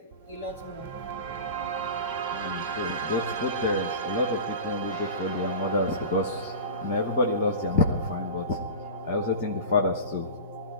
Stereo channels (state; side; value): inverted; both; correlation -0.30